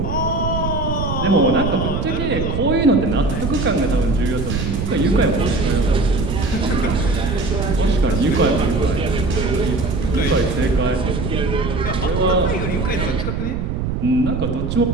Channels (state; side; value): noise; right; rumble, 2 dB below the sound